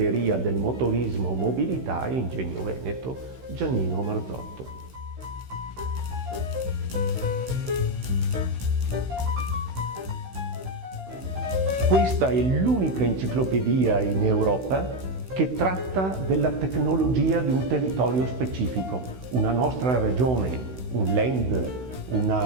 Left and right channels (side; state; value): left; late; 16 ms